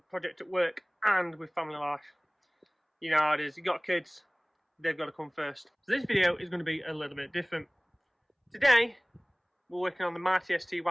at work and with family life. You know how it is, you got kids, they've got to come first. So this video is going to be a little bit different. Today, we're working on the Mighty ST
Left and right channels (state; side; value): identical; both; correlation 1.00